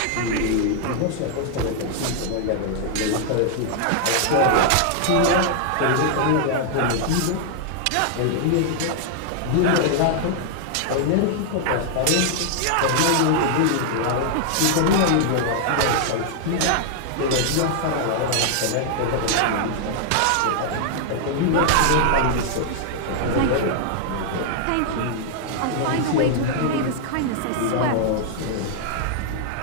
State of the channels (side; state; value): both; different; correlation 0.00